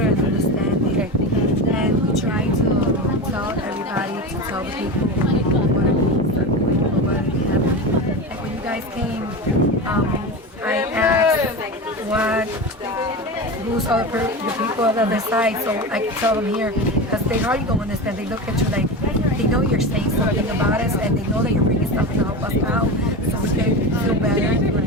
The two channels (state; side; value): normal; both; correlation 0.24